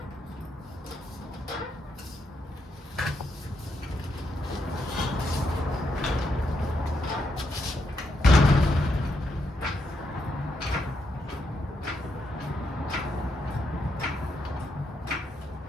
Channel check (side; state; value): both; normal; correlation 0.80